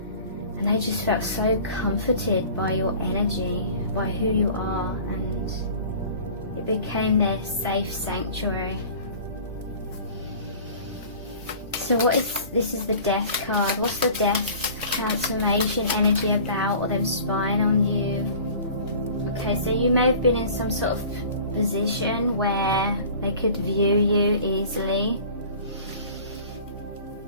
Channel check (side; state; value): both; inverted; correlation -0.44